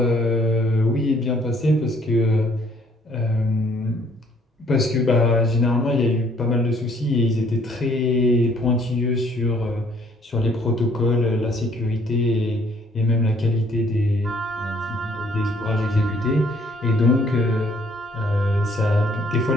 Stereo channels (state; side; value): normal; both; correlation 0.62